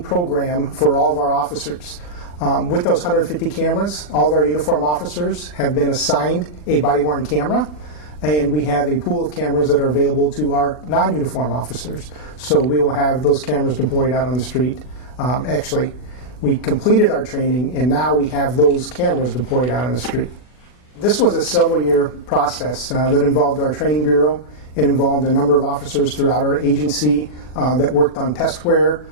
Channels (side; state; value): right; late; 40 ms